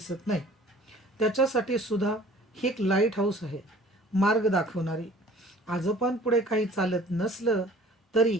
नाही. त्याच्यासाठी सुधा ही एक लाईट हाऊस आहे, मार्ग दाखवणारी. आजोबांपुढे काही चालत नसलं तरी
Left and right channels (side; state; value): both; normal; correlation 0.50